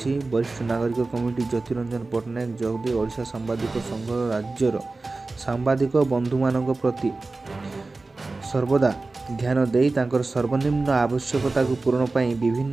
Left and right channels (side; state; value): left; quieter; 3.5 dB